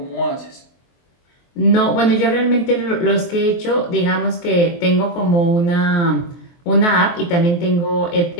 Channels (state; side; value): late; right; 23 ms